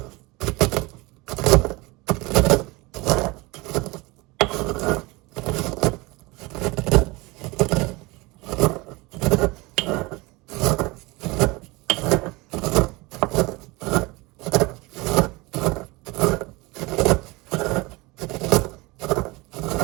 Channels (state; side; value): quieter; left; 23.7 dB